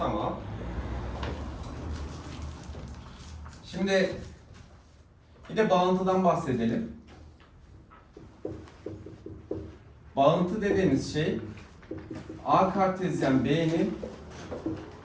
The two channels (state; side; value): identical; both; correlation 1.00